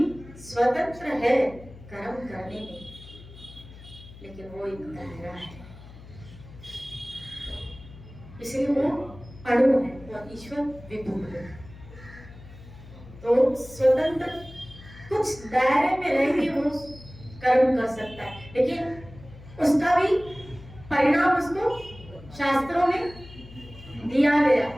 स्वतंत्र है कर्म करने में, लेकिन वो एक दायरा है, इसलिए वो अणु है और ईश्वर विभु है। तो स्वतंत्र कुछ दायरे में रह के वो कर्म कर सकता है, लेकिन उसका भी परिणाम उसको शास्त्रों में दिया गया।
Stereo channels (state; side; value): noise; left; hum, 18 dB below the sound